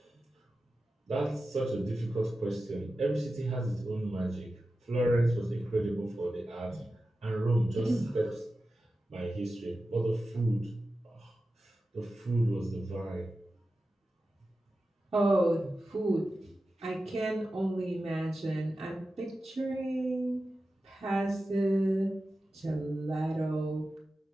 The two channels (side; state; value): both; normal; correlation 0.93